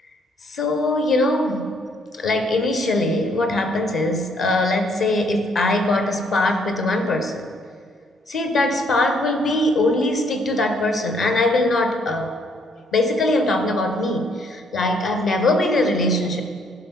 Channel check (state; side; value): normal; both; correlation 0.67